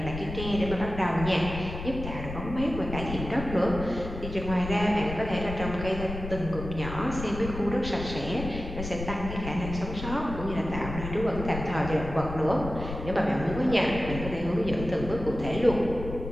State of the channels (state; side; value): noise; left; rumble, 8 dB below the sound